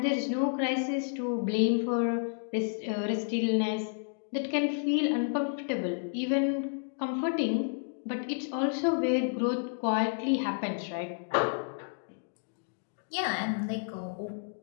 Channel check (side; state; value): right; silent; digital silence